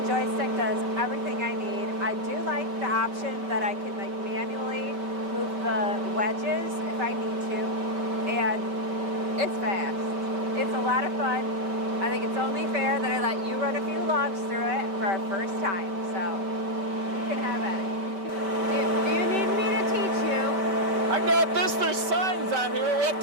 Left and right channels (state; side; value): late; left; 5.2 ms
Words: does everything I need. I do like the option that I can like manually move the wedges if I need to. And it's fast. It's a lot of fun. I think it's only fair that I let you run a few logs through it for our first time. So you can have at it. Do you need me to teach you? I got this. There's signs on here what